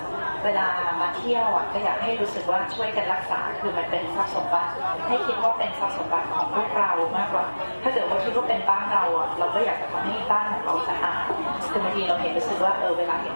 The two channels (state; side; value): inverted; both; correlation -1.00